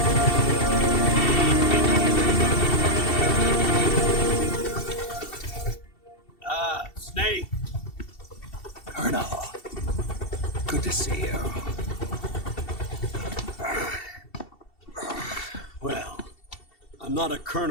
Snake. Colonel. Good to see you. Well, I'm not a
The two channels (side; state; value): right; late; 2.7 ms